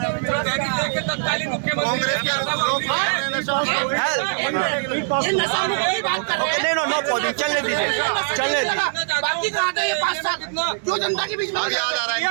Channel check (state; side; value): silent; left; digital silence